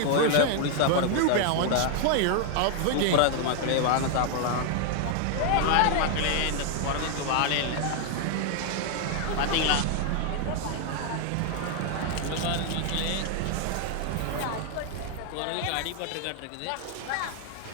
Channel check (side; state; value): both; different; correlation 0.00